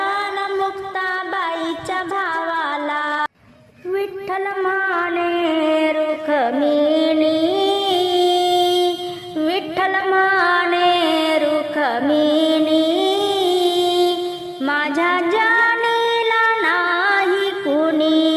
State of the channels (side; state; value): both; identical; correlation 1.00